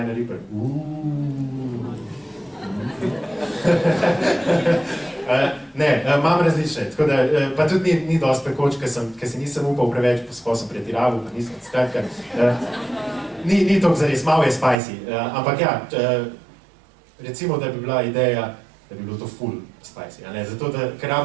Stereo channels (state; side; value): drops out; left; at 14.8 s